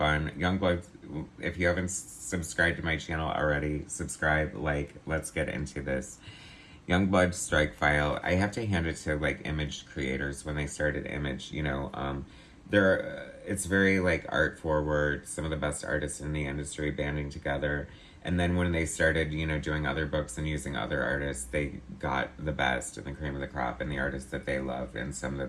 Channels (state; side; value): identical; both; correlation 1.00